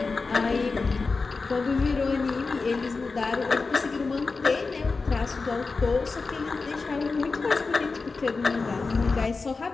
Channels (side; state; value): right; quieter; 4.2 dB